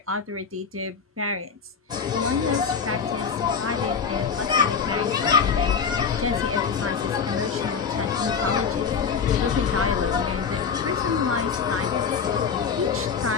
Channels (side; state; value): right; quieter; 6.1 dB